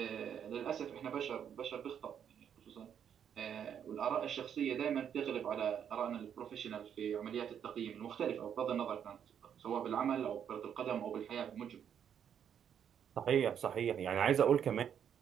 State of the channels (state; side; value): quieter; left; 8.6 dB